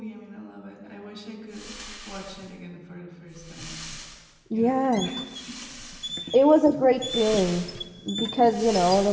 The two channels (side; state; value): both; identical; correlation 1.00